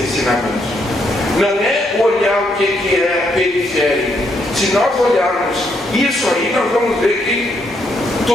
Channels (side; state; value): both; normal; correlation 0.75